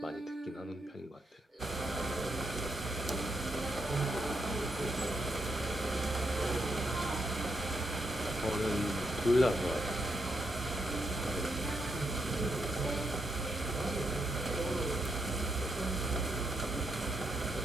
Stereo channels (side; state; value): both; normal; correlation 0.80